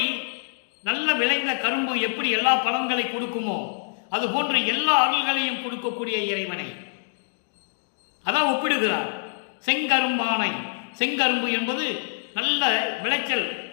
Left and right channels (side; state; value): right; silent; digital silence